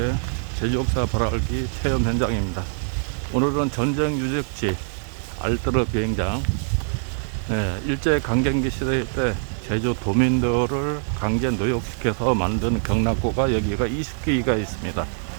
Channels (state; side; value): silent; left; 59 dB below the other